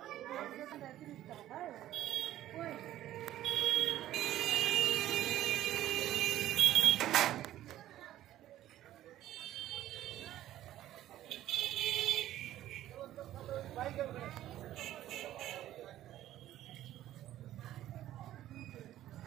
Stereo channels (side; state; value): left; quieter; 13.4 dB